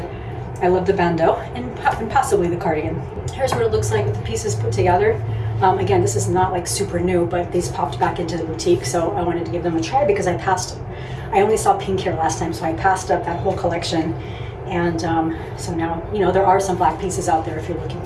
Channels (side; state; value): both; identical; correlation 1.00